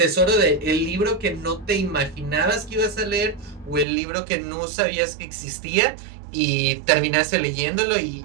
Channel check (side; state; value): left; drops out; at 3.9 s